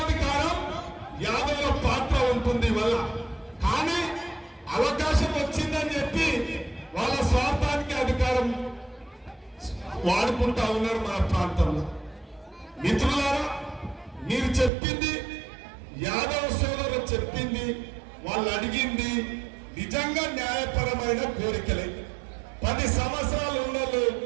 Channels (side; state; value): left; drops out; at 14.7 s